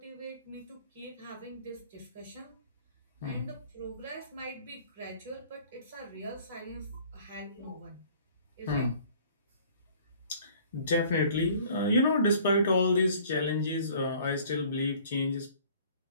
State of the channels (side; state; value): both; inverted; correlation -0.52